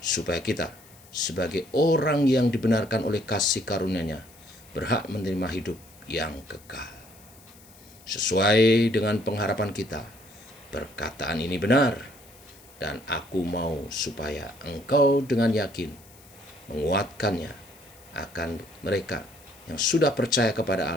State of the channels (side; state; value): left; noise; hiss, 24 dB below the sound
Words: supaya kita sebagai orang yang dibenarkan oleh kasih karunia-Nya berhak menerima hidup yang kekal. Sesuai dengan pengharapan kita, perkataan ini benar, dan aku mau supaya engkau dengan yakin menguatkannya akan mereka yang sudah percaya kepada